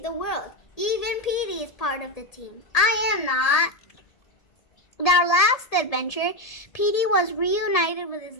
the world. Even Petey is part of the team. I am not. In our last adventure, Petey was reunited with his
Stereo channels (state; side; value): late; right; 1.7 ms